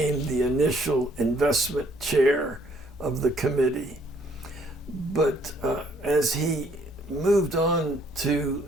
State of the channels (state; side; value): normal; both; correlation 0.64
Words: the initial investment chair of the committee. But as he moved on